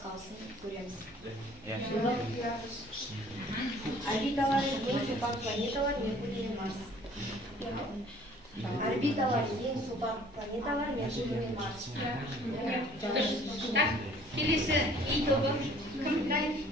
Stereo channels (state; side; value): normal; both; correlation 0.54